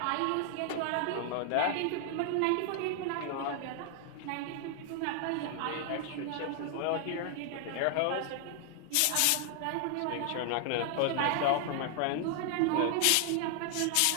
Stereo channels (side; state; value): both; different; correlation 0.00